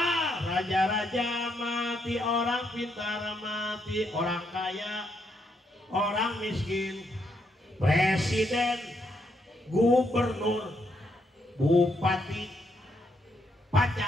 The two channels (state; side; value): normal; both; correlation 0.77